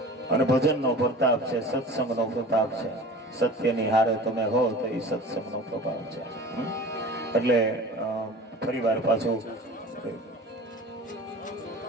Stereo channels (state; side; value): normal; both; correlation 0.39